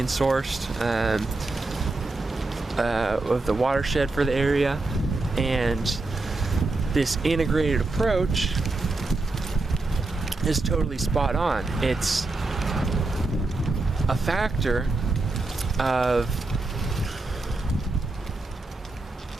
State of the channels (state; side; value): quieter; left; 3.2 dB